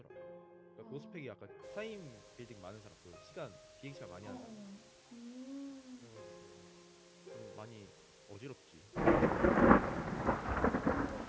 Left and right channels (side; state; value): both; identical; correlation 1.00